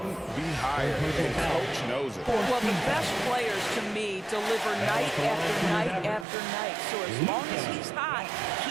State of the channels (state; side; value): drops out; left; at 6.2 s